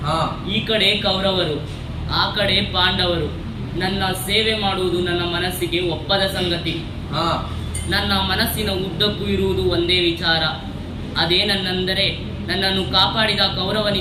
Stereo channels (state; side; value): identical; both; correlation 1.00